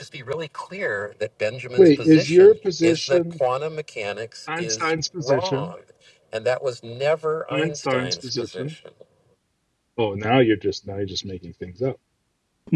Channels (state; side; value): identical; both; correlation 1.00